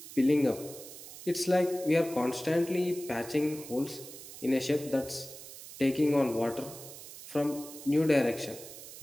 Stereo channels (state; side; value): noise; right; hiss, 14 dB below the sound